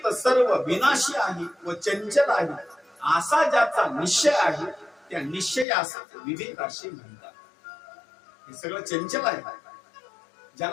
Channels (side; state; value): right; drops out; at 5.7 s